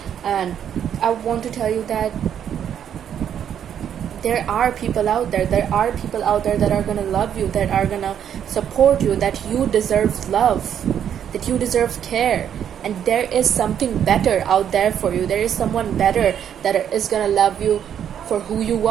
And I want to tell you that there are people out there that are gonna love you, that are gonna support you, that you deserve love, that you deserve care. And there is something better out there for you. There is someone better that is gonna love you for who you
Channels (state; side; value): quieter; left; 9.2 dB